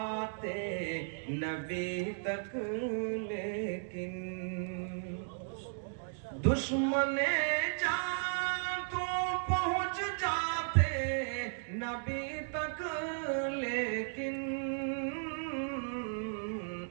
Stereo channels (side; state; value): left; silent; digital silence